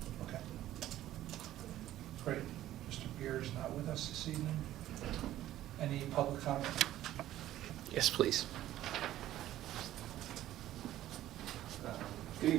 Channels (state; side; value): quieter; left; 13.7 dB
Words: Okay. Great. Mr. Beer is not with us this evening. Any public comment? Yes, please. Good